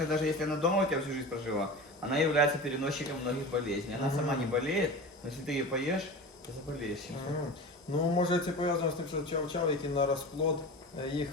даже если она дома у тебя всю жизнь прожила, она является переносчиком многих болезней. Она сама не болеет, но если ты ее поешь, то заболеешь. чем-то. Ну, може це пов'язано з тим, що чау-чау, який на розплод їх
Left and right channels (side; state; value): both; normal; correlation 0.32